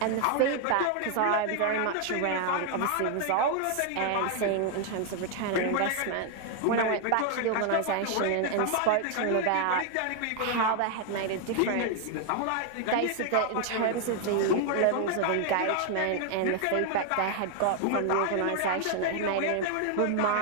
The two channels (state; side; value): different; both; correlation 0.00